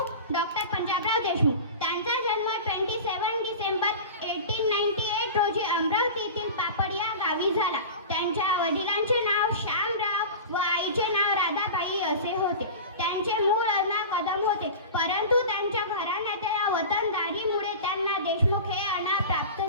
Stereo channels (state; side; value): inverted; both; correlation -0.32